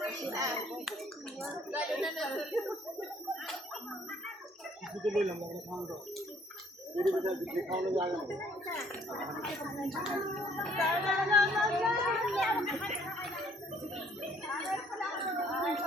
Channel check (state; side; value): normal; both; correlation 0.62